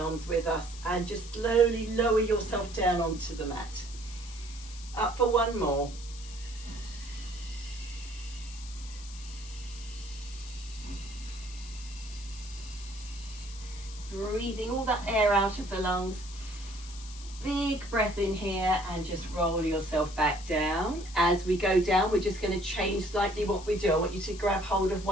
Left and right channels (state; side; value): noise; left; hiss, 16 dB below the sound